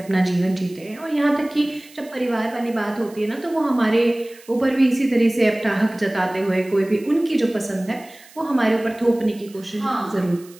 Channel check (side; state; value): right; noise; hiss, 24 dB below the sound